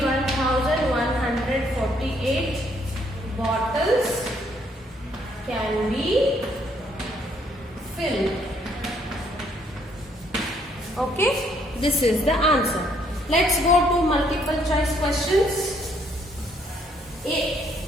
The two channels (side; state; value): both; normal; correlation 0.68